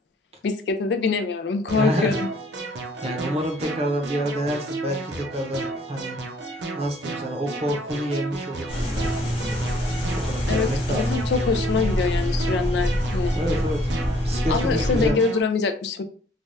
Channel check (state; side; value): normal; both; correlation 0.60